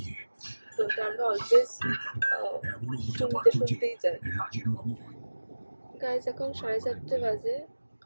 তো এটা আমরা অলওয়েজ শুনতেই যাই। গাইজ এখন 4:30 বাজে,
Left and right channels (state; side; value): inverted; both; correlation -1.00